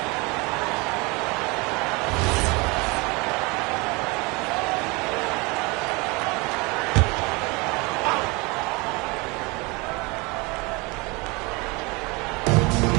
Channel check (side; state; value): left; quieter; 26.6 dB